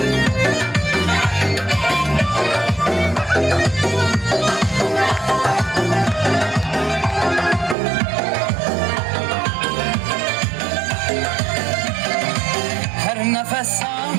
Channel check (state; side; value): drops out; left; at 7.8 s